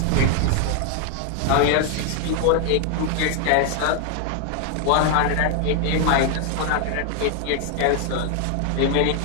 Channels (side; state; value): both; different; correlation 0.00